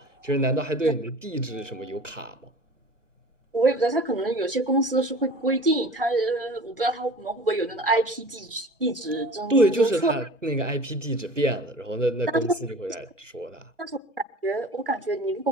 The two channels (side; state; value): both; normal; correlation 0.41